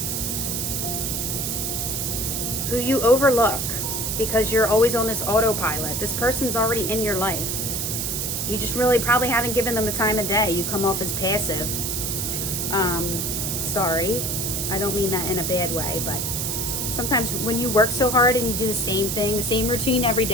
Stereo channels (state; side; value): noise; right; hiss, 1 dB below the sound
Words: who you overlook because you're always on this autopilot. This person's already in your life. You just really probably haven't given them the time of day. You come off as passive. Sorry, I don't mean that in a bad way, but sometimes when you work so hard and you do the same thing, the same routine every